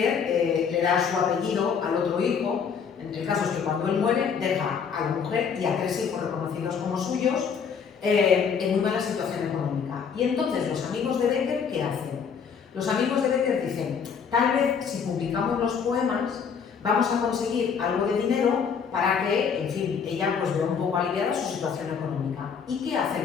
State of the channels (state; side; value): quieter; right; 6.6 dB